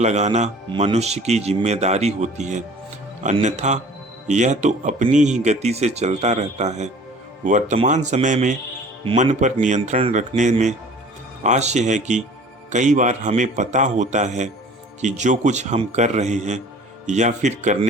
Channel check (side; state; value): both; normal; correlation 0.47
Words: मनुष्य की जिम्मेदारी होती है, अन्यथा यह तो अपनी ही गति से चलता रहता है। वर्तमान समय में मन पर नियंत्रण रखने में आशय है कि कई बार हमें पता होता है कि जो कुछ हम कर रहे हैं या फिर